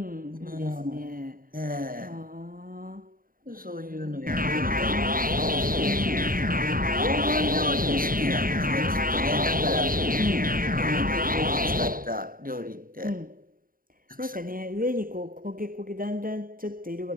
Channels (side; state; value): left; late; 0.41 ms